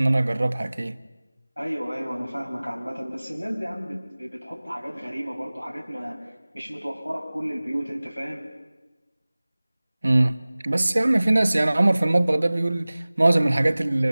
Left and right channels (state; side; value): inverted; both; correlation -0.99